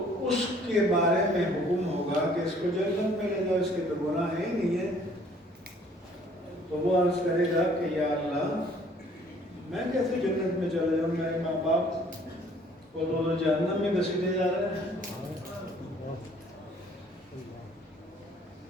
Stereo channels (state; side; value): normal; both; correlation 0.58